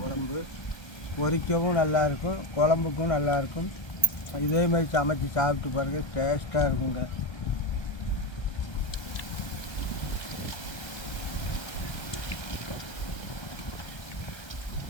பொரிக்கவும் நல்லாயிருக்கும், குழம்புக்கும் நல்லாயிருக்கும். இதே மாதிரி சமைச்சி சாப்பிட்டு பாருங்கள், டேஸ்ட்டாக இருக்குங்க.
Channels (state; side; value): late; right; 1.3 ms